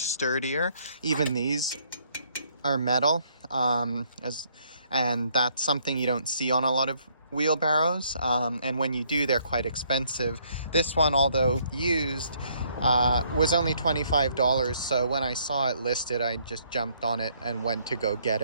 Even these are metal, and that's something you don't see on a lot of wheelbarrows, and when you do, they're quite expensive. This one, although used, was only $25, so when I saw it listed, I just jumped on it and went to go get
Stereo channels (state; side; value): inverted; both; correlation -0.68